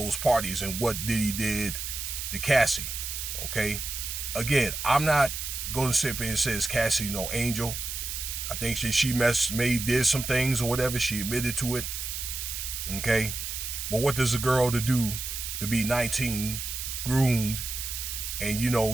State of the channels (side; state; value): right; noise; hiss, 5 dB below the sound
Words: parties and what Diddy did to Cassie, okay? Again, I'm not going to sit there and say Cassie's no angel. I think she did some things or whatever. She admitted to it. Okay. But what does a girl to do to be 19, groomed,